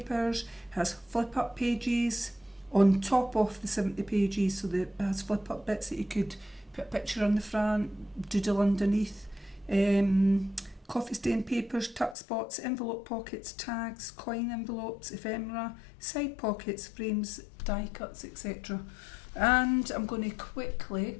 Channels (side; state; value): right; drops out; at 12.2 s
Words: has flip up pages on top of the 70 pages, so it has flip up bits that you could put a picture on the front, doodle underneath. Coffee stain papers, tuck spots, envelope pockets, tags, coin envelopes, ephemera, side pockets, frames, die cuts, etc. And I'm going to quickly